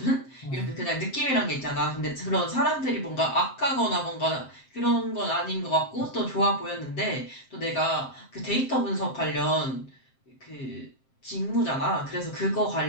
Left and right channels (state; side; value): late; right; 7.6 ms